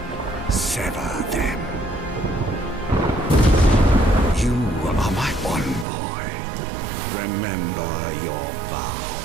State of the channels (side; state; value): left; drops out; at 5.9 s